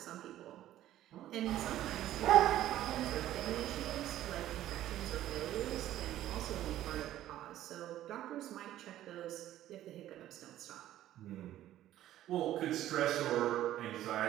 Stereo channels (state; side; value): quieter; left; 13.1 dB